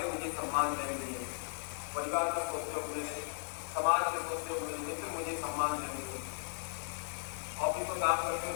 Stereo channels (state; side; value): silent; right; 53 dB below the other